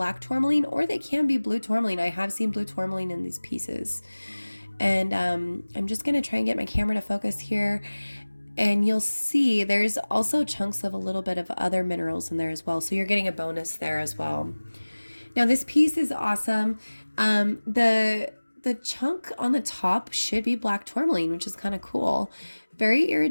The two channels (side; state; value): both; inverted; correlation -1.00